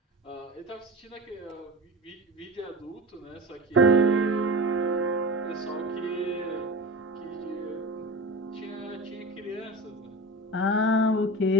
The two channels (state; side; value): normal; both; correlation 0.31